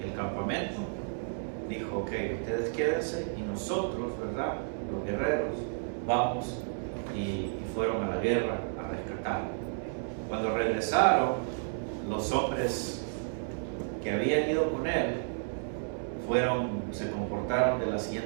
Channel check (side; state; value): left; silent; digital silence